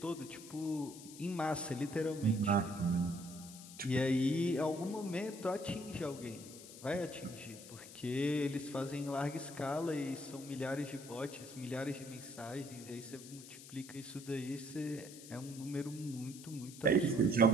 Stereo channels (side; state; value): left; noise; hiss, 15 dB below the sound